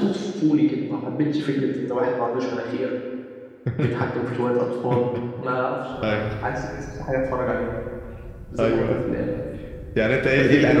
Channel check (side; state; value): both; identical; correlation 1.00